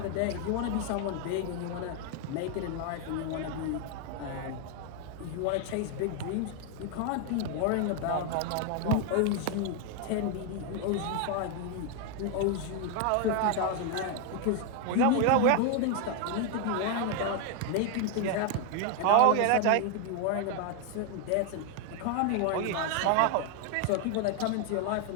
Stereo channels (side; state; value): both; different; correlation 0.01